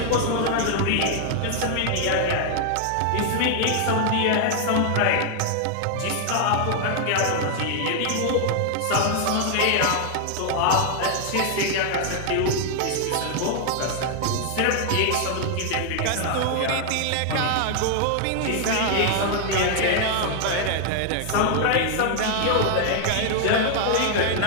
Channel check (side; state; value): both; different; correlation 0.00